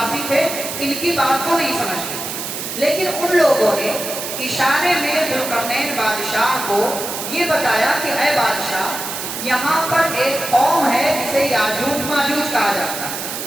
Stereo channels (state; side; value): noise; right; hiss, 6 dB below the sound